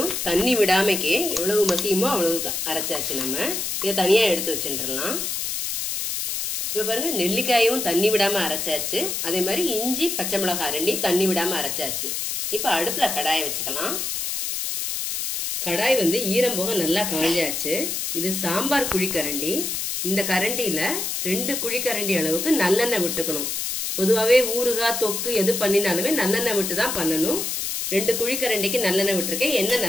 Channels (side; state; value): left; noise; hiss, 2 dB below the sound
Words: தண்ணி விடாமக்கே எவ்வளவு மசியுமோ அவ்வளவு அரைச்சாச்சு. நம்ம இதை தனியா எடுத்து வச்சுட்டுலாம். இப்ப பாருங்க, நெல்லிக்காயும் தண்ணி விடாம அரைச்சாச்சு. அதே மாதிரி இஞ்சி பச்சை மிளகாய் ரெண்டையும் தண்ணி விடாம அரைச்சாச்சு. இப்ப அடுப்புல கடாயை வச்சுக்கலாம். கடாய் ஈரம் போக நல்லா காஞ்சாச்சு. இது சாம்பார் குழிக்கரண்டி. இந்த கரண்டியில 2 குழிக்கரண்டி அளவுக்கு நல்லெண்ணெய் விட்டுக்கணும். பொதுவாவே ஊறுகாய் தொக்கு எது பண்ணினாலுமே நல்லெண்ணெய் விட்டு தான் பண்ணணும். 2 குழிக்கரண்டிக்கு நல்லெண்ணெய் விட்டுருக்கேன். எண்ணெய்